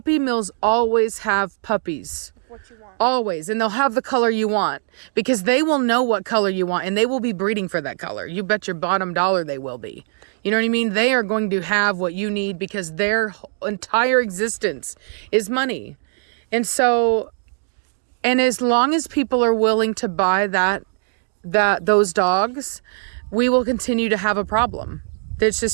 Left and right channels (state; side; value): silent; left; digital silence